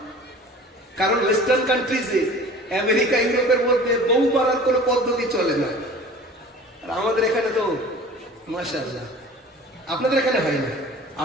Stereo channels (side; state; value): both; normal; correlation 0.43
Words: কারণ ওয়েস্টার্ন কান্ট্রিজে, আমেরিকা ইউরোপের মধ্যে বউ মারার কোনো পদ্ধতি চলে না। আর আমাদের এখানে তো মাশাআল্লাহ, আপনাদের এখানে হয় না,